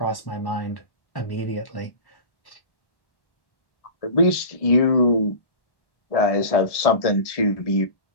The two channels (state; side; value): late; right; 1.7 ms